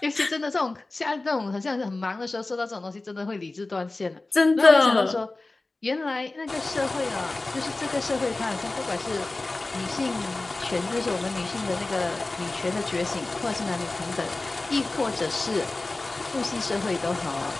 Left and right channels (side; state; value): right; quieter; 3.1 dB